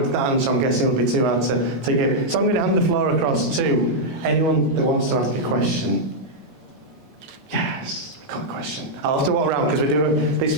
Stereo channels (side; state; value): both; normal; correlation -0.05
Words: answer, I'm guessing, would be too hard to give. So I'm going to hand the floor across to anyone that wants to ask a question. Yes, I've got a question. I'll have to walk around, because we do